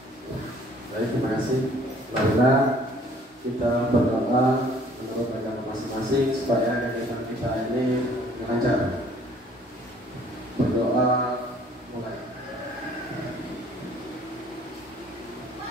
Baik, terima kasih. Marilah kita berdoa menurut agama masing-masing supaya kegiatan kita ini lancar. Berdoa mulai.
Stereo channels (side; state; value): both; normal; correlation 0.57